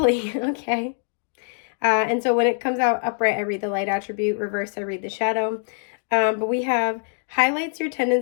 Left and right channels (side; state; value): right; silent; 63 dB below the other